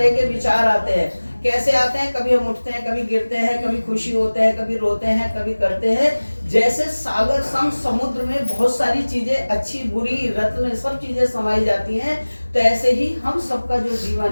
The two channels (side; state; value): both; inverted; correlation -1.00